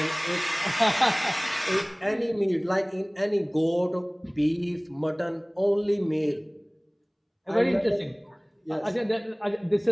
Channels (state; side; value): identical; both; correlation 1.00